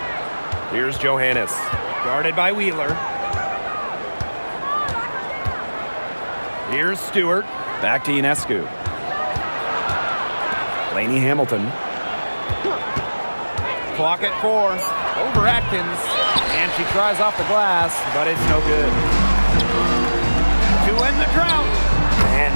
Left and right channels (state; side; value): inverted; both; correlation -1.00